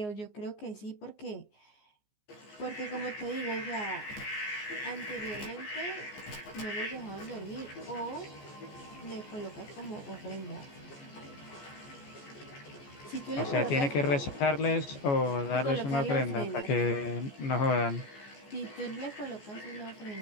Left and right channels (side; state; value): right; late; 14 ms